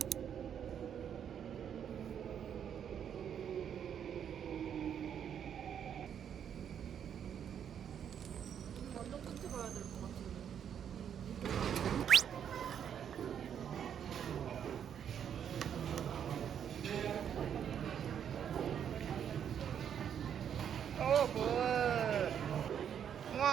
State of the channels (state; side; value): quieter; left; 8.6 dB